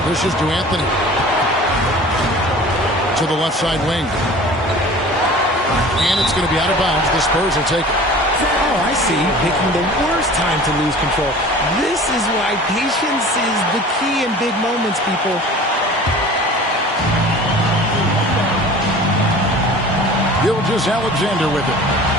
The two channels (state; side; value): normal; both; correlation 0.42